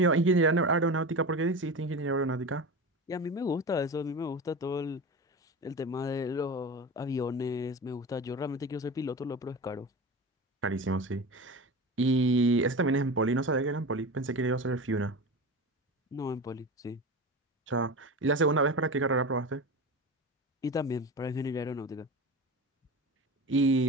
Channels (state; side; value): normal; both; correlation 0.28